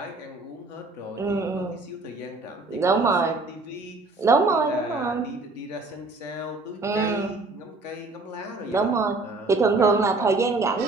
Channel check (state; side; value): quieter; left; 3.3 dB